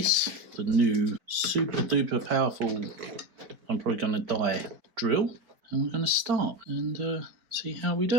the new super duper powerful, I'm probably going to die drill, and we're going to start and see how we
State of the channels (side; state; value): left; late; 4.7 ms